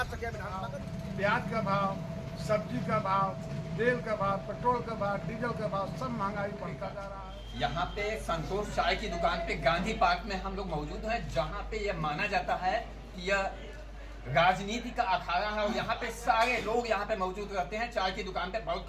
सकिया विधानसभा। प्याज का भाव, सब्जी का भाव, तेल का भाव, पेट्रोल का भाव, डीजल का भाव, सब महंगाई बढ़ता जा रहा है। यहाँ पे संतोष चाय की दुकान पे गांधी पार्क में हम लोग मौजूद हैं, जहाँ पे यह माना जाता है कि यह राजनीति का अखाड़ा है और यहाँ पे सारे लोग यहाँ पे मौजूद रहते हैं। चाय की दुकान पे बहुत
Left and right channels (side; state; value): both; identical; correlation 1.00